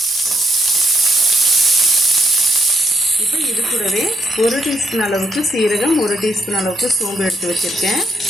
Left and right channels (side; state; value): both; normal; correlation 0.74